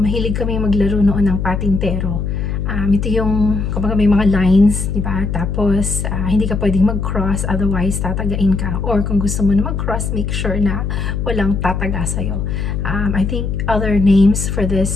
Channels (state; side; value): noise; left; hum, 2 dB below the sound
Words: kami maglaro noon ng patintero. Ito yung, kapag may mga lines, di ba? Tapos, hindi ka pwedeng mag-cross, otherwise tatagain ka. Or kung gusto mo na mag-cross, make sure na walang tataga sa'yo. I think other names for